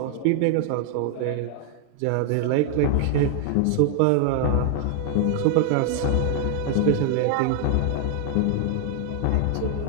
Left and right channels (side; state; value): both; different; correlation 0.00